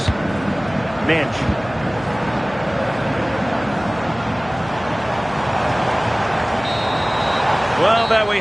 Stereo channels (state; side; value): noise; left; hum, 17 dB below the sound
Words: Mensch. Well, there we